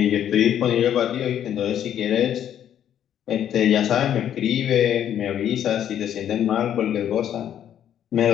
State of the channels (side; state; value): right; quieter; 10.1 dB